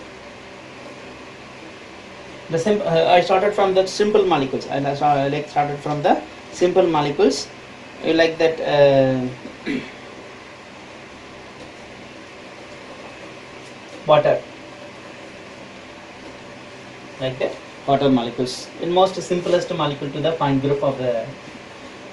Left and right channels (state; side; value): identical; both; correlation 1.00